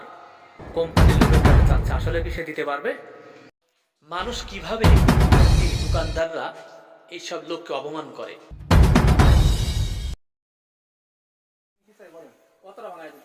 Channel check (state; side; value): identical; both; correlation 1.00